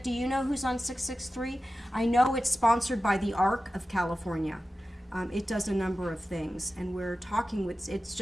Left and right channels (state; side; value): normal; both; correlation 0.94